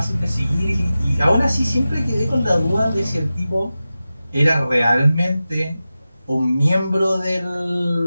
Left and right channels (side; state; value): both; inverted; correlation -0.94